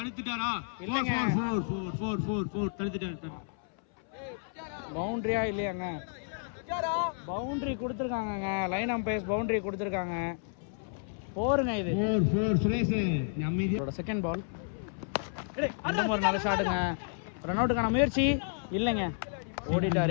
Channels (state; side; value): silent; right; 57 dB below the other